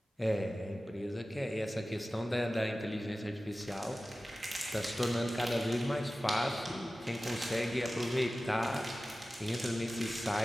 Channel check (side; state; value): both; normal; correlation 0.96